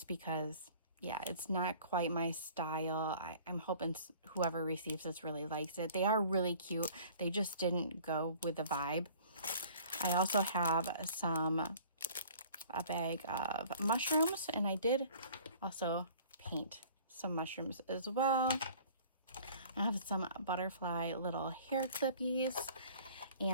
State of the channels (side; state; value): both; inverted; correlation -0.50